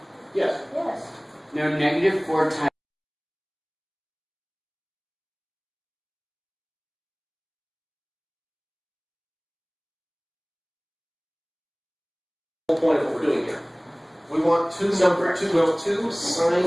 Yes. Yes. No, negative 4 times whole point of what we're doing here. We want two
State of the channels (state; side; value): identical; both; correlation 1.00